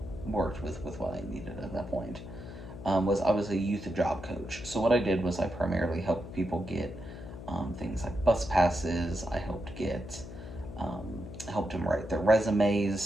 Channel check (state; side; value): noise; left; hum, 12 dB below the sound